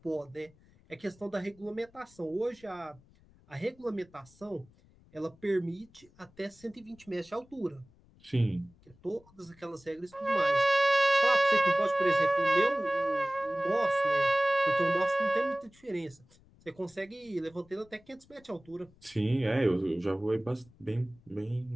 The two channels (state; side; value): noise; left; rumble, 28 dB below the sound